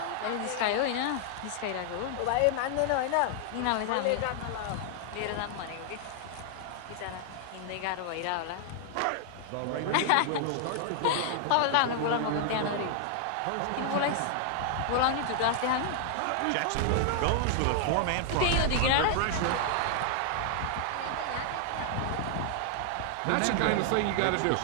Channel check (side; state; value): both; different; correlation 0.00